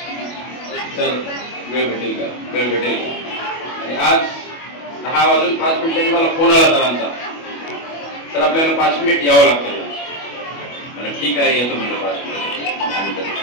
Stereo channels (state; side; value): late; right; 25 ms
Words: सर वेळ भेटेल का, वेळ भेटेल का. आणि आज 10 वाजून 5 मिनिटांनी मला फोन आला सरांचा, तर आपल्याला 5 मिनिट यावं लागतं. मला ठीक आहे येतो म्हणलं 5 मिनिट.